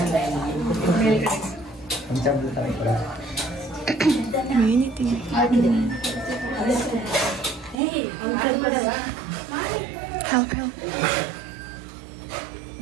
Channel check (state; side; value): drops out; left; at 7.8 s